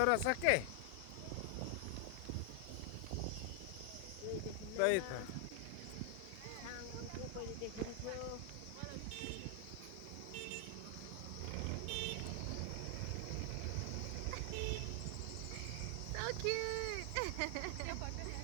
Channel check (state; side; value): different; both; correlation 0.00